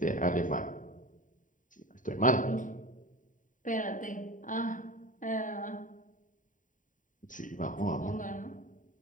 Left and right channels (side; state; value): right; late; 0.38 ms